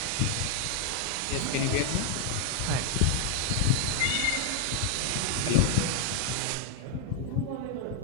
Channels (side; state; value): both; different; correlation 0.00